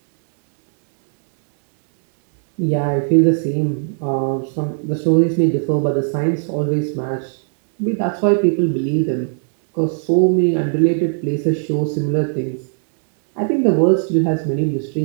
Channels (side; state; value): left; silent; 67 dB below the other